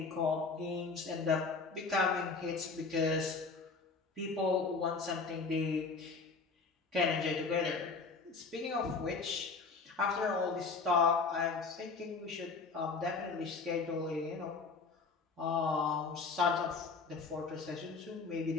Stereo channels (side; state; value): right; quieter; 4.5 dB